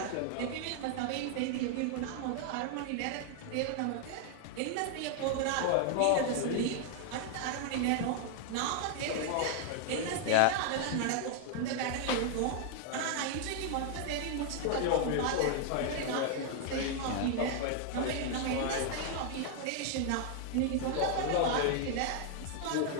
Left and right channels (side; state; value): both; different; correlation 0.00